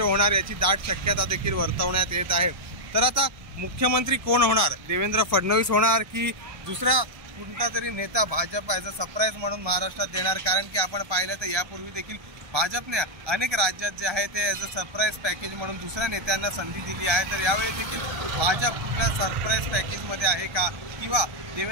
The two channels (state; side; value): late; left; 1.3 ms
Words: होणार याची दाट शक्यता देखील वर्तवण्यात येत आहे। तर आता मुख्यमंत्री कोण होणार, देवेंद्र फडणवीस होणार की दुसरा कोणता तरी नेता भाजप ॲज अ सरप्राईज म्हणून महाराष्ट्रात देणार? कारण की आपण पाहिलं तर यापूर्वी देखील भाजपने अनेक राज्यात जे आहे ते ॲज अ सरप्राईज पॅकेज म्हणून दुसऱ्या नेत्यांना संधी दिली आहे। तर यावेळी देखील भाजप कुठल्या सरप्राईज पॅकेजमध्ये आहे का किंवा